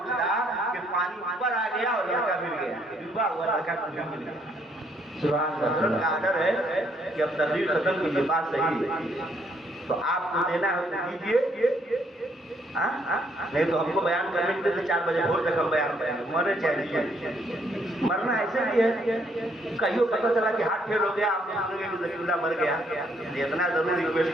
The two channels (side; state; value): both; normal; correlation 0.69